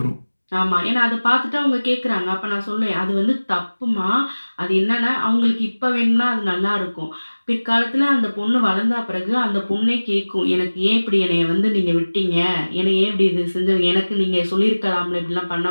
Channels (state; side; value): inverted; both; correlation -1.00